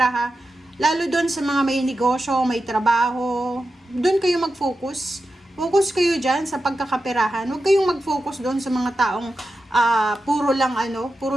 lalo doon sa mga may negosyo, may trabaho, doon kayo mag-focus. Focus kayo dyan sa pagkakaperahan. Huwag kayong mag-focus doon sa mga taong puro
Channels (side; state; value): both; normal; correlation 0.91